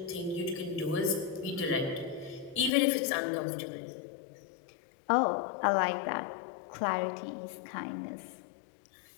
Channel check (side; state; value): right; drops out; at 2.7 s